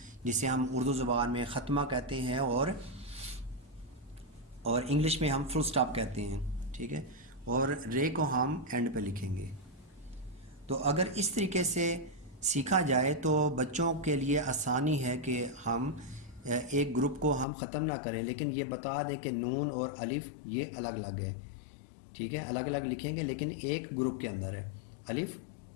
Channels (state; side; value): drops out; right; at 17.4 s